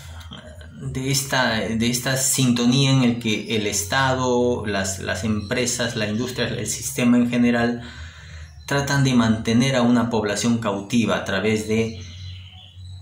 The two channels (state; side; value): identical; both; correlation 1.00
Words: esta sintonía en el que el Estado, las empresas, la industria, el sistema en general tratan de mantener a una población cautiva a través de